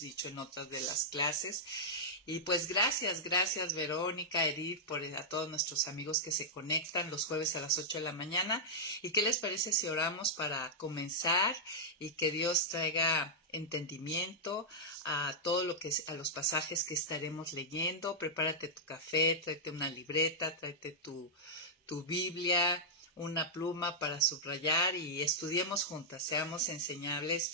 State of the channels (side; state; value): both; normal; correlation -0.09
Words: en otras de las clases. Y pues gracias Verónica, Edith, a todos nuestros amigos que se conectan los jueves a las 8 de la mañana. ¿Y qué les parece si oramos para comenzar y que Dios traiga entendimiento a a los pasajes que estaremos leyendo? Prepárate tu café, tráete una libreta, tráete tu Biblia, una pluma para subrayar y estudiemos juntas, seamos enseñables,